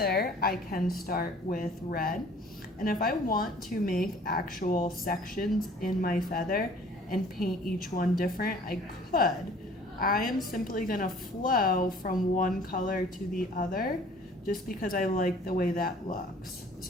I can start with red. And if I want to make actual sections in my feather and paint each one different, I could. I am simply gonna flow from one color to the other just because I like the way that looks.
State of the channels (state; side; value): normal; both; correlation 0.52